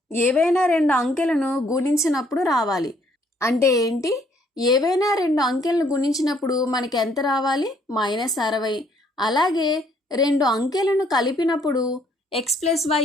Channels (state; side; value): normal; both; correlation 0.66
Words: ఏవైనా 2 అంకెలను గుణించినప్పుడు రావాలి. అంటే ఏంటి? ఏవైనా 2 అంకెలను గుణించినప్పుడు మనకి ఎంత రావాలి? -60. అలాగే 2 అంకెలను కలిపినప్పుడు x + y